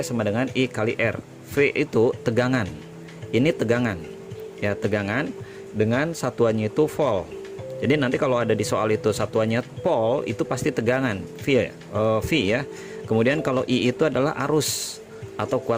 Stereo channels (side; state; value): both; identical; correlation 1.00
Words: sama dengan I kali R. V itu tegangan, ini tegangan, ya, tegangan dengan satuannya itu volt. Jadi nanti kalau ada di soal itu satuannya volt, itu pasti tegangan V ya. Kemudian kalau I itu adalah arus atau